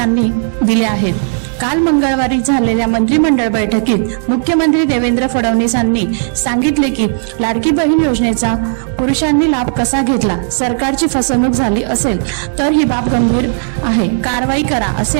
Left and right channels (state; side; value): silent; left; 68 dB below the other